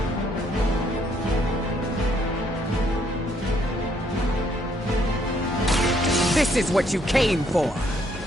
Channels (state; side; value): normal; both; correlation 0.69